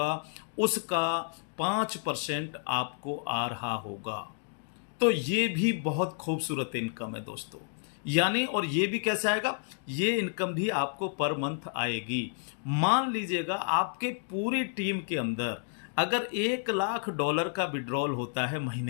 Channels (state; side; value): silent; right; 57 dB below the other